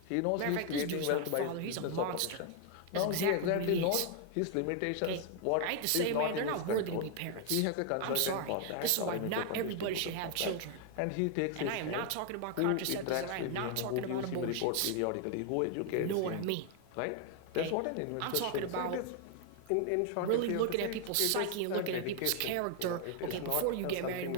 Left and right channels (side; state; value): both; different; correlation 0.00